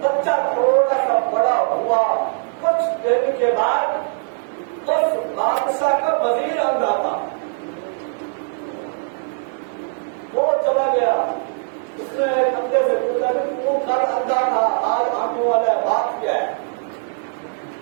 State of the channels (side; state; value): left; silent; digital silence